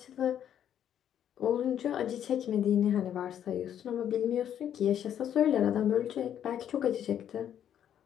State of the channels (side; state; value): right; quieter; 9.9 dB